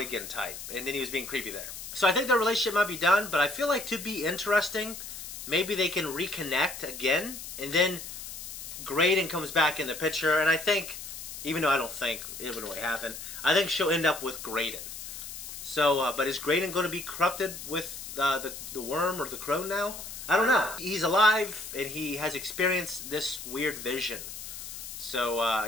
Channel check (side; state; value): left; noise; hiss, 10 dB below the sound